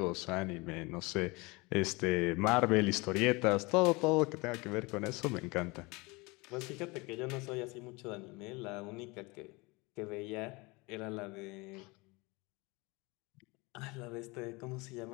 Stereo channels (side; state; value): right; quieter; 25.4 dB